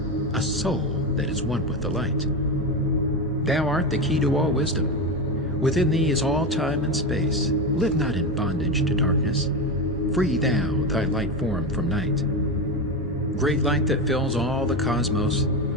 a soul that is one with the light. Thou art the key to all wisdom. Within thee is all time and space. Live not in bondage to darkness. Free thou thy light form from night. Great light that fills all the cosmos,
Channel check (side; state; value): both; normal; correlation 0.16